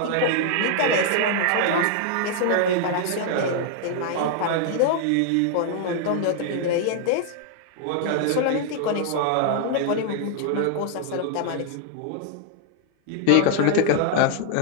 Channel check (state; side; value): different; both; correlation 0.00